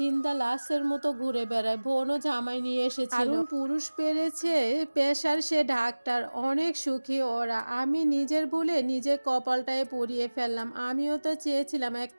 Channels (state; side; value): inverted; both; correlation -1.00